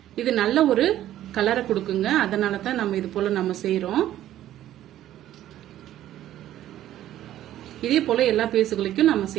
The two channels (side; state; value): left; quieter; 12.7 dB